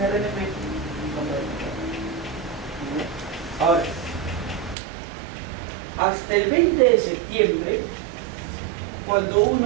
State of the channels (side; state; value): left; drops out; at 4.8 s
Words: RNP no puede contratar. Ahora, hasta el 20 de septiembre, cuando